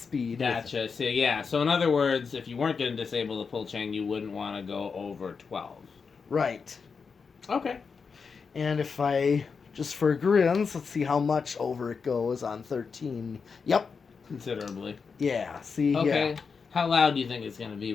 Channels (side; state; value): right; quieter; 5.4 dB